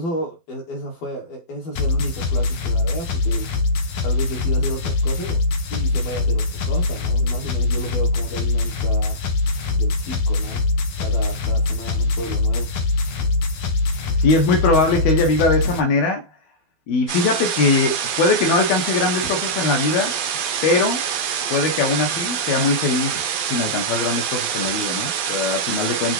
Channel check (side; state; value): right; late; 12 ms